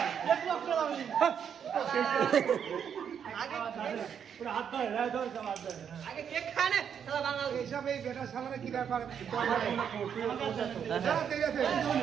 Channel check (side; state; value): left; quieter; 7.9 dB